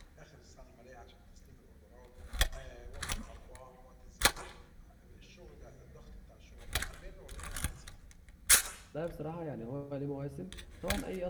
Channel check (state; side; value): identical; both; correlation 1.00